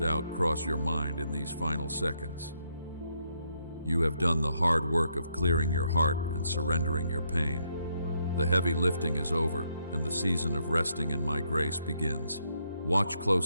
cross your mind in these final seconds. You have done the hard work of clearing your heart and surrendering your pain. The heavy lifting is over, and the season of resting in my grace begins. Watch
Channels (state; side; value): inverted; both; correlation -0.77